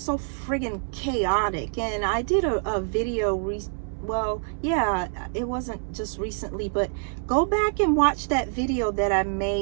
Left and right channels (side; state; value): left; silent; digital silence